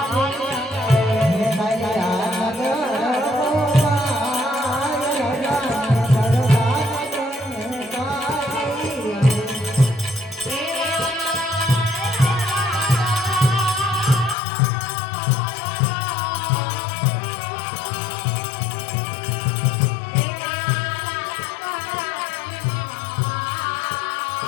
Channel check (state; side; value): drops out; right; at 14.4 s